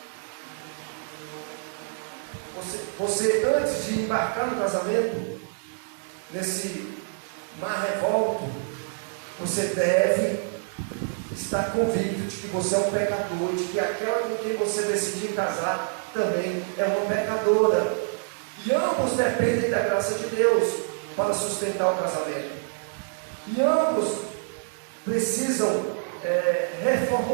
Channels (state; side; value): silent; left; digital silence